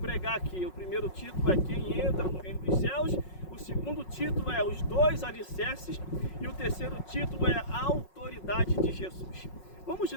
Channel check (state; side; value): late; right; 5.5 ms